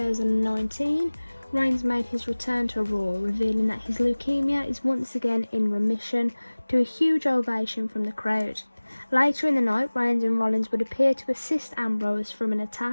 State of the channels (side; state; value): both; inverted; correlation -1.00